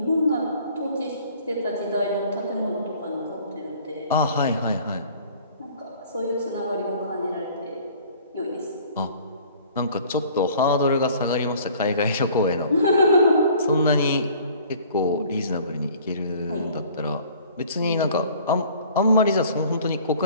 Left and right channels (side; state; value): both; inverted; correlation -0.52